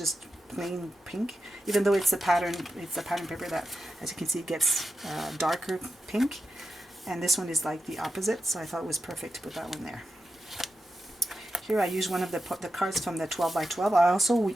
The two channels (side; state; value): both; normal; correlation 0.90